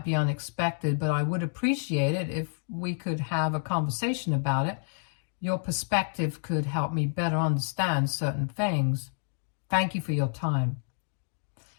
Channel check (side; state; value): right; silent; digital silence